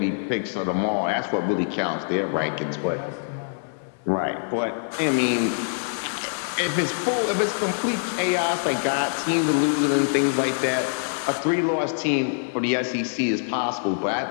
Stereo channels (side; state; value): right; silent; digital silence